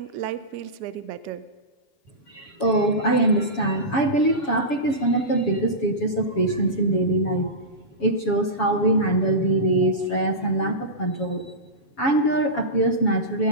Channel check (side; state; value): right; late; 7.2 ms